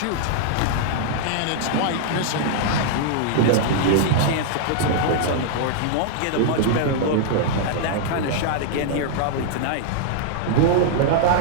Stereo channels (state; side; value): different; both; correlation -0.01